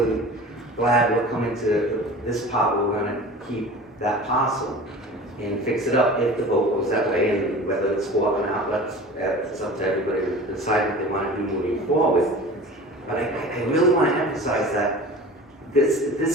glad we're coming to this part where we're going to keep that parcel and fix it up if the vote goes that way, and whether it's for or not, it's up to everybody to decide what they want to do moving forward. But I really want to emphasize that this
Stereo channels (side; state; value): both; normal; correlation 0.38